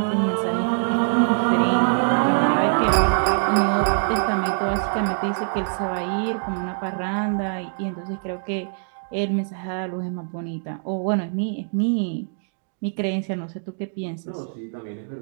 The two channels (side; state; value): left; silent; digital silence